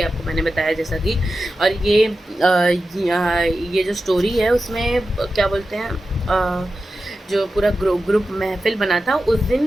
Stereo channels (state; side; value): normal; both; correlation 0.92